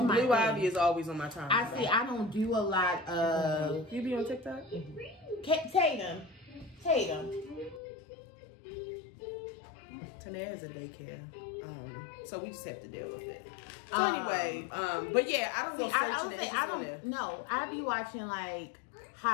my Blue thing. Ivy is always on my timeline. I see. I don't do a lot of. You be on TikTok? Tatum. Tanae has a daycare, so we just have to deal with it. So anyway, but yeah, I don't go searching it. I don't. No, I be watching like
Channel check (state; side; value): drops out; right; at 7.8 s